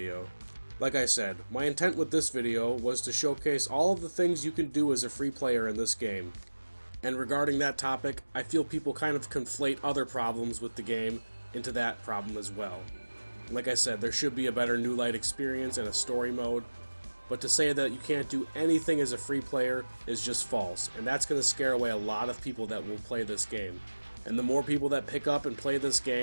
Like I said, my intent with this video was to showcase all of the things you can do as a free player in this game. And regarding that topic, I feel people kind of conflate other problems with the game into that problem as well. Like I said, there should be a better New Light experience and a story mode, but to say that you can't do anything as a free player is just false, and that's going to scare away a lot of people that will play this game. And the more people that pick up and play this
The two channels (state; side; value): inverted; both; correlation -1.00